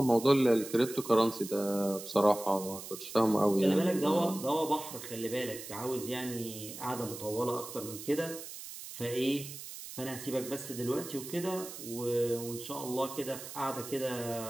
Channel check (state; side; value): noise; right; hiss, 11 dB below the sound